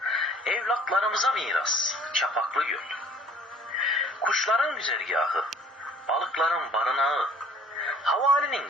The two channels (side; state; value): both; normal; correlation 0.54